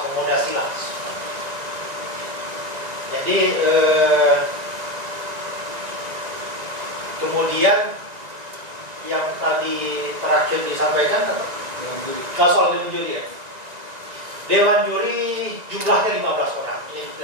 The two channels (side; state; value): left; late; 1.9 ms